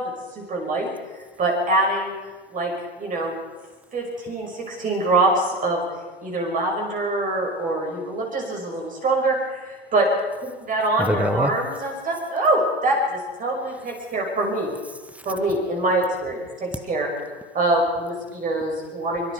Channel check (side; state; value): both; normal; correlation 0.30